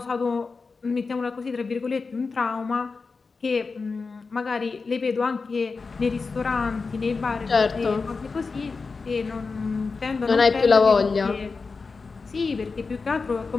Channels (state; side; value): quieter; right; 4.5 dB